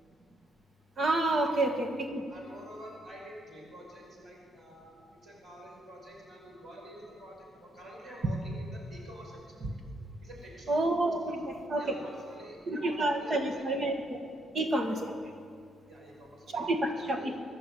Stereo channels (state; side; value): normal; both; correlation 0.73